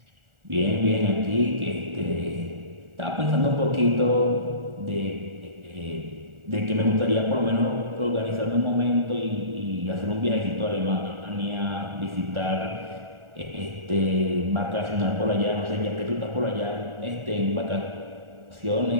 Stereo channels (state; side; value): late; left; 1.4 ms